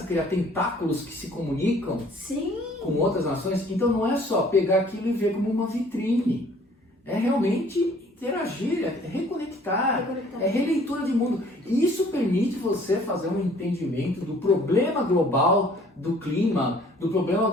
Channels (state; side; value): normal; both; correlation 0.56